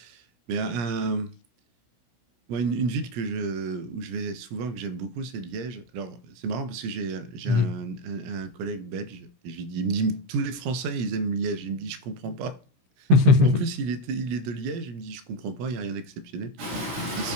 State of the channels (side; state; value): left; late; 17 ms